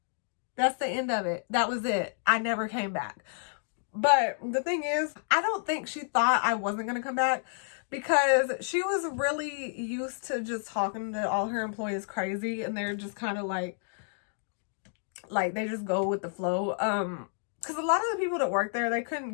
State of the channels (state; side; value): silent; right; digital silence